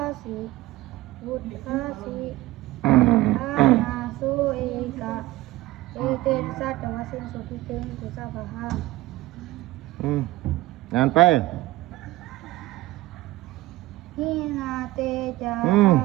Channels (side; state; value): left; quieter; 17.9 dB